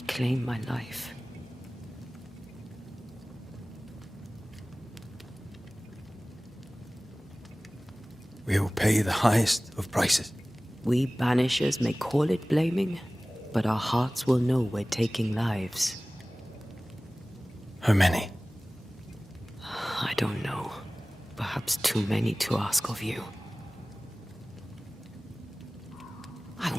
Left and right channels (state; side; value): normal; both; correlation 0.98